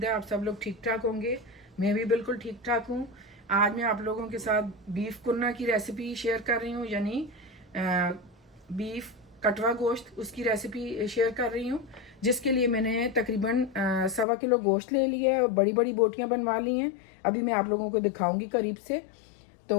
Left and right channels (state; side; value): drops out; right; at 14.2 s